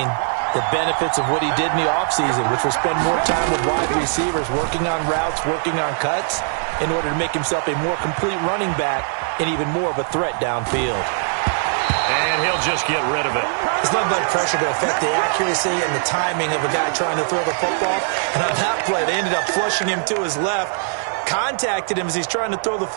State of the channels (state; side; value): silent; left; digital silence